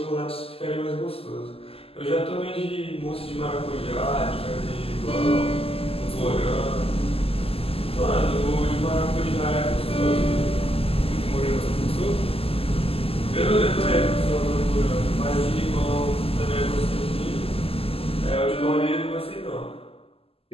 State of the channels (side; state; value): right; late; 0.28 ms